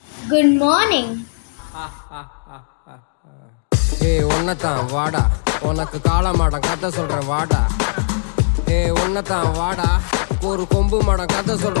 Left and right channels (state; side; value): silent; right; digital silence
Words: Good morning. ஏய் ஒன்னதான் வாடா, உனக்கு காளமாடம் கதை சொல்றேன் வாடா. ஏய் ஒன்னதான் வாடா, ஒரு கொம்பு மாடம் கதை